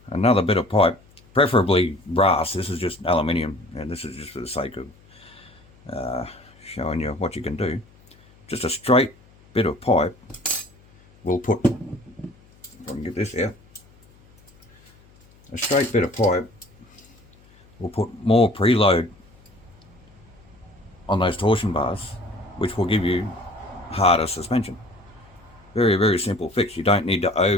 another bit of pipe, preferably brass. This is just aluminium, and this is just for the sake of showing you what you can do. Just a straight bit of pipe. We'll put, if I can get this out, a straight bit of pipe. We'll put more preload on those torsion bars, which will give you harder suspension. Very, very simple fix. You don't need to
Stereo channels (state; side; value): noise; left; hum, 28 dB below the sound